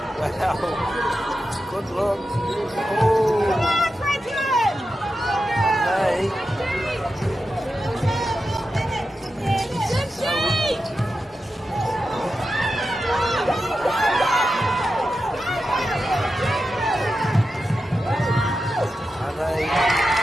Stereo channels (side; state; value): both; normal; correlation 0.90